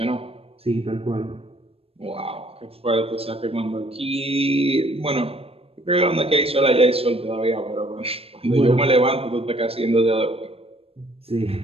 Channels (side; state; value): left; late; 0.28 ms